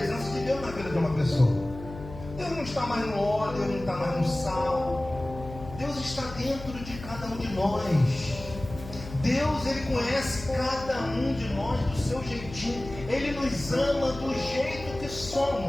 de Deus na vida de uma pessoa. Deus não está mais no óleo, Deus não está mais no sal. Deus está dentro de cada um de nós. Deus, Ele conhece cada um de nós do seu jeitinho. Ele nos ama do jeito que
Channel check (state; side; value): noise; left; hum, 13 dB below the sound